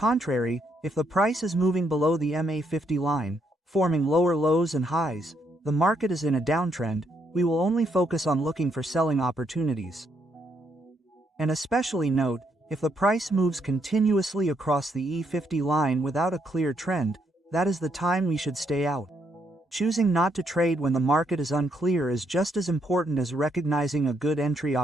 if the price is moving below the MA50 line, forming lower lows and highs, the market is in a downtrend. We will only focus on looking for selling opportunities. And especially note, if the price moves continuously across the E50 line without a clear trend, that is the time we should stay out. Choosing not to trade when the market is unclear is just as important as recognizing a good entry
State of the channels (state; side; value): normal; both; correlation 0.75